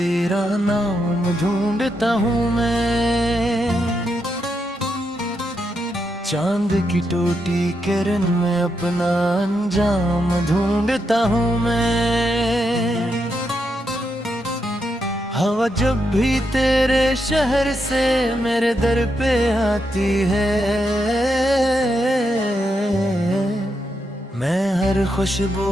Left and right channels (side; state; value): both; normal; correlation 0.82